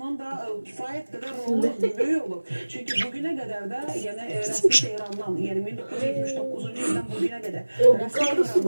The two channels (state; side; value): inverted; both; correlation -1.00